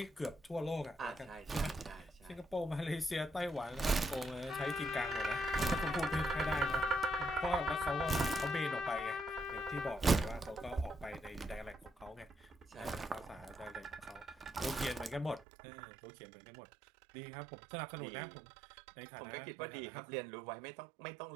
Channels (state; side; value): drops out; left; at 15.5 s